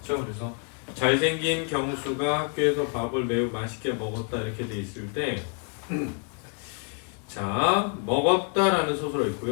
그렇죠? 그래서 잘생긴 경수가 학교에서 밥을 매우 맛있게 먹었다 이렇게 돼 있을 때 자, 먹었다라는 서술어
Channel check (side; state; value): right; quieter; 38.4 dB